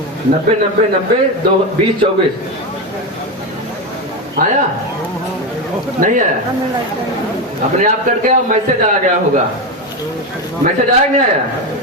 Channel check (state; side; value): normal; both; correlation 0.14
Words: 90-90-90 20-24 आया? नहीं आया? अपने आप कट गया, मैसेज आ गया होगा। मैसेज आया नहीं आया?